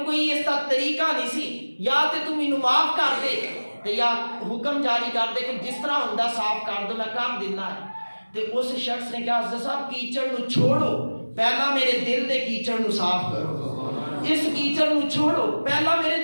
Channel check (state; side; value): inverted; both; correlation -1.00